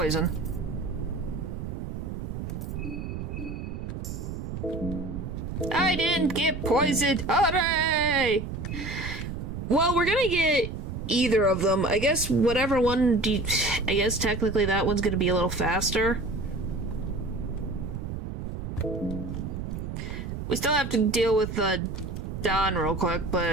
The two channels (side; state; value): right; noise; rumble, 6 dB below the sound